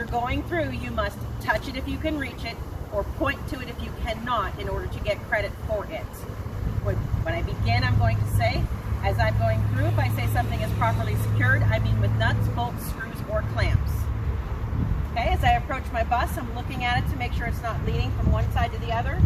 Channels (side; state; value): both; identical; correlation 1.00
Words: going through, you must touch it if you can reach it, or point to it if you cannot in order to get credit for it. When I begin, I'm going to say, as I'm going through, if I say something is properly secured, I mean with nuts, bolts, screws, or clamps. Okay, as I approach my bus, I'm looking at it to make sure it's not leaning from one side to the other,